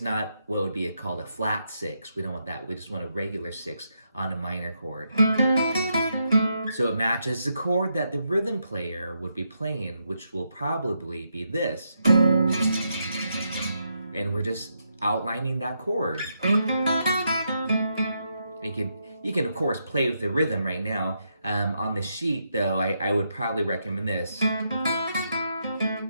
not what would be called a flat 6. We don't want that. We just want a regular 6 on a minor chord. So it matches the chord that the rhythm player would be playing, which will probably be this. And we're just outlining that chord. You can of course play with the rhythm right now. On the sheet though, I would probably recommend this.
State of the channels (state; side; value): inverted; both; correlation -0.81